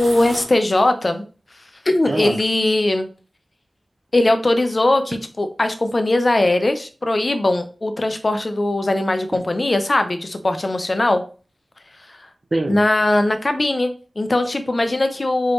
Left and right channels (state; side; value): normal; both; correlation 0.98